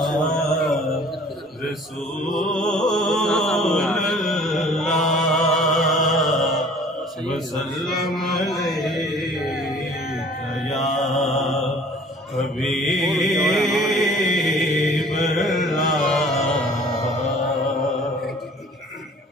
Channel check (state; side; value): normal; both; correlation 0.51